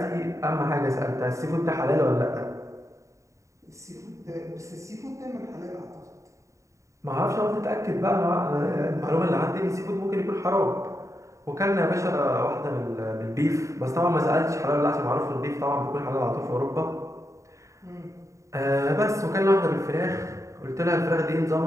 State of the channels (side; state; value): left; late; 0.15 ms